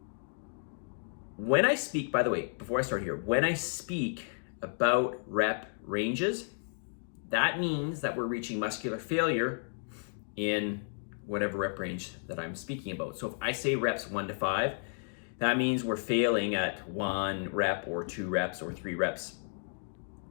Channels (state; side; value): silent; right; digital silence